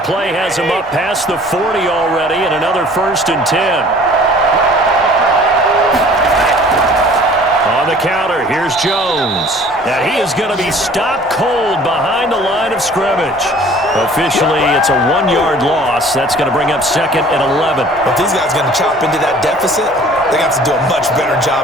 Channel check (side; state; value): both; normal; correlation 0.50